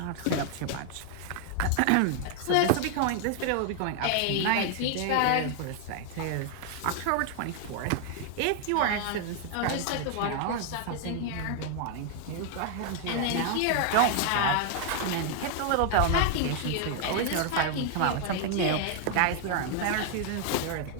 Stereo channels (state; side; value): different; both; correlation 0.00